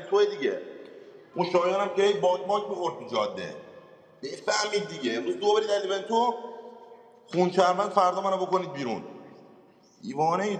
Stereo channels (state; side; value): identical; both; correlation 1.00